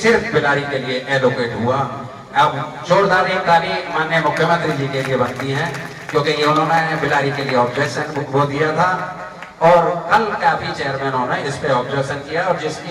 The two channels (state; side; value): identical; both; correlation 1.00